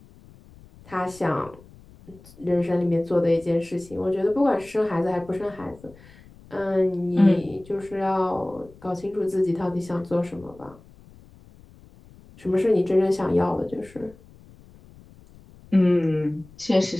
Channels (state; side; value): noise; left; rumble, 24 dB below the sound